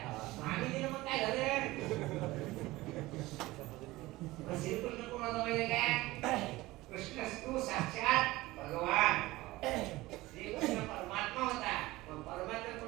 आम्ही दिलं मग काय झालं श्रीकृष्ण कोणाचा माहिती काय कृष्णस्तू साक्षात भगवान श्रीकृष्ण परमात्मा होता मग परमात्मा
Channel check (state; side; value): quieter; left; 19.1 dB